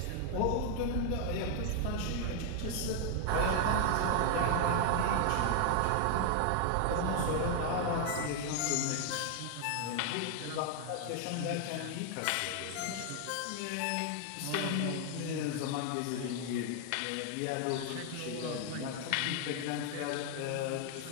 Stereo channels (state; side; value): different; both; correlation 0.00